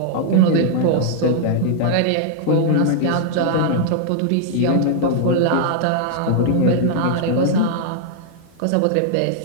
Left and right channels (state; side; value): different; both; correlation -0.01